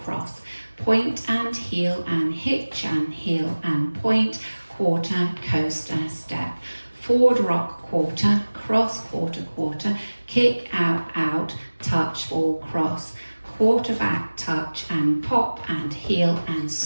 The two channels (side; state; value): both; inverted; correlation -1.00